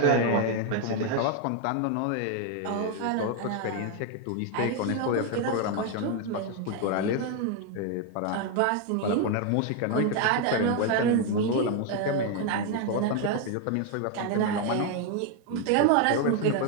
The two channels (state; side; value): different; both; correlation 0.01